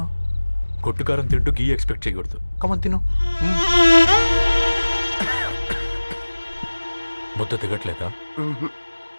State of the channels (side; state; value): both; inverted; correlation -1.00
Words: కొట్టుకారం తింటూ గీ ఎక్స్పెక్ట్ చేయకూడదు. కమన్ తిను. ముద్ద దిగట్లేదా?